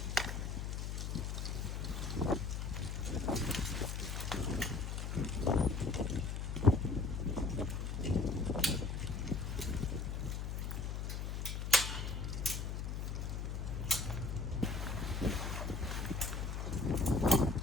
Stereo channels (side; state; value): left; noise; hum, 2 dB below the sound